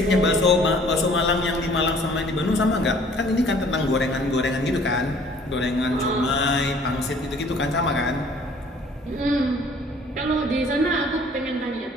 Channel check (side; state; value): both; normal; correlation 0.55